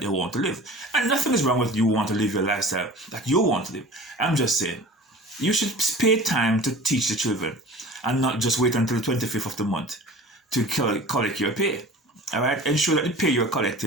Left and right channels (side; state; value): both; normal; correlation 0.40